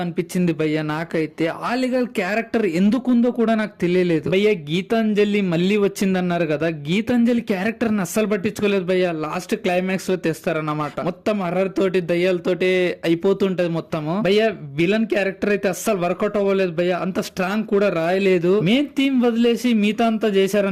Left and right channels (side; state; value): both; identical; correlation 1.00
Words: అనిపించింది భయ్య నాకైతే. ఆలిగల్ క్యారెక్టర్ ఎందుకుందో కూడా నాకు తెలియలేదు భయ్య. గీతాంజలి మళ్ళీ వచ్చిందన్నారు కదా, గీతాంజలి క్యారెక్టర్ ని అస్సలు పట్టించుకోలేదు భయ్య. లాస్ట్ క్లైమాక్స్ లో తెస్తారన్నమాట. మొత్తం హర్రర్ తోటి దయ్యాలతోటి అయిపోతుంటది మొత్తము భయ్య. విలన్ క్యారెక్టర్ అయితే అస్సలు వర్కౌట్ అవ్వలేదు భయ్య. అంత స్ట్రాంగ్ కూడా రాయలేదు. మెయిన్ థీమ్ వదిలేసి మిగతా అంతా